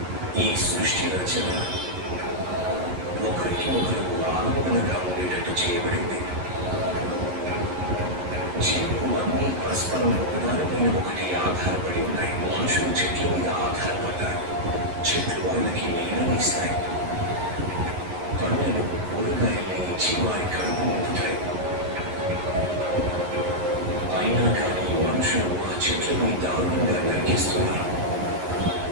ఈ సృష్టి రచన ఒకరికి ఒకరు ఆనందంగా ఉండేటట్టు చేయబడింది. జీవులు అన్నీ పరస్పరం ఒకదానిపైన ఒకటి ఆధారపడి ఉన్నాయి. మనుషులు చెట్ల మీద ఆధారపడ్డారు. చెట్లు వాళ్ళకి నీడనిస్తాయి, పండ్లను కూరగాయల్ని ఇచ్చి వారి కడుపు నింపుతాయి. అయినా కానీ మనుషులు ఆ చెట్లని దారుణంగా నరికేస్తున్నారు.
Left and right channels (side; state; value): left; late; 11 ms